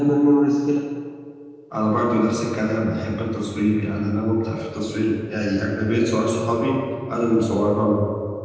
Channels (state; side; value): identical; both; correlation 1.00